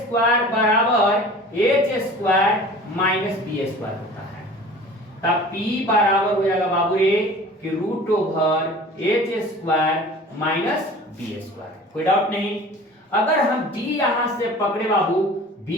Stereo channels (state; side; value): normal; both; correlation 0.42